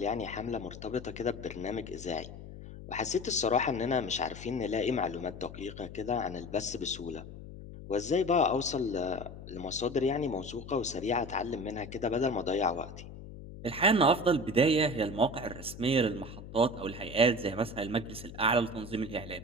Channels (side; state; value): left; noise; hum, 13 dB below the sound